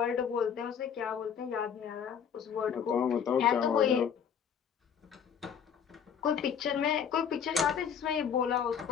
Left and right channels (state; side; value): quieter; right; 7.7 dB